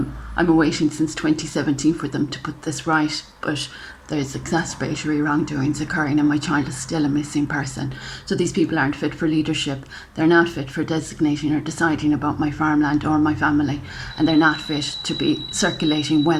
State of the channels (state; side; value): identical; both; correlation 1.00